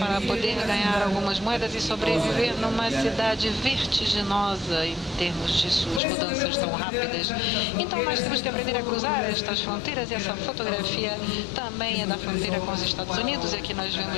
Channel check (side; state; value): right; drops out; at 6.0 s